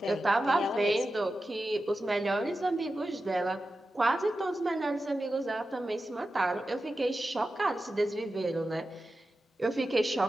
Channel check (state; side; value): normal; both; correlation 0.92